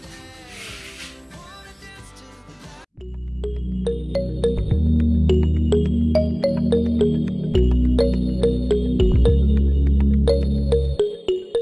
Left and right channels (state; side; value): identical; both; correlation 1.00